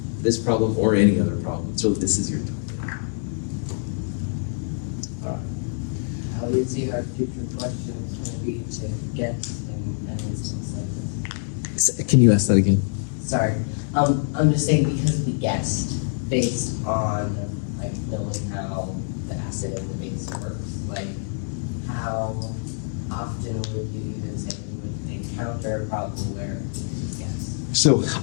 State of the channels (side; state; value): right; silent; 61 dB below the other